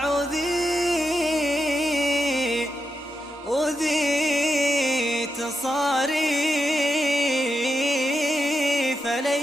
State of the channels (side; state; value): both; normal; correlation 0.85